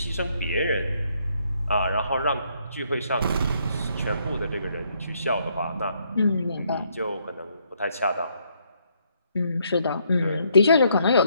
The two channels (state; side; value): inverted; both; correlation -0.71